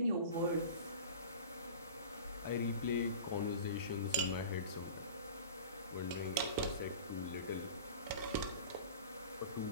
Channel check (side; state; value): both; inverted; correlation -0.37